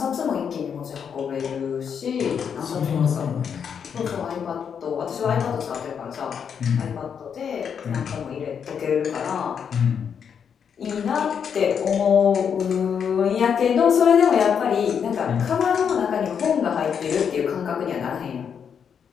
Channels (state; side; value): quieter; right; 7.3 dB